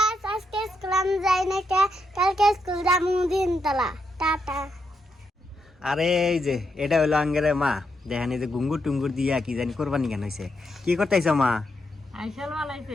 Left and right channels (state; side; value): normal; both; correlation 0.81